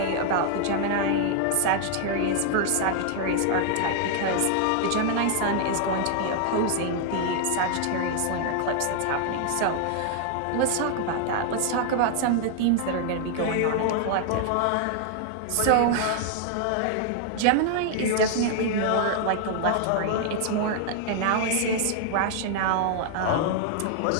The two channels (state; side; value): different; both; correlation 0.00